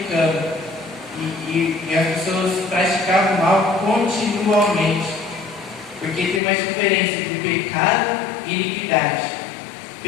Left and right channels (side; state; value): right; drops out; at 6.4 s